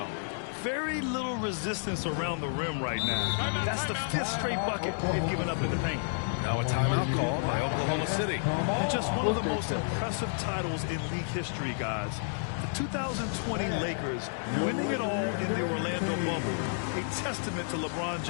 very little resistance around the rim right now. That's the 5th straight bucket they've given up in the paint. Now a timeout call by Oklahoma City. And just one of the most impressive titles in league history, guys. The 2020 Lakers winning it all in the Orlando bubble. A testament to LeBron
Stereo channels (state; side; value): silent; right; digital silence